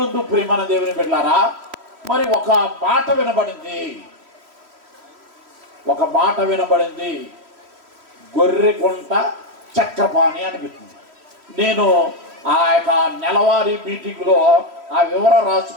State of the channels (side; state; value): left; late; 3.1 ms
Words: ప్రియమైన దేవుని బిడ్డలారా, మరి ఒక మాట వినబడింది, గొర్రెగుంట చక్రపాణి అనిపిస్తుంది. నేను ఆ యొక్క నెలవారీ మీటింగ్లో ఆ వివరం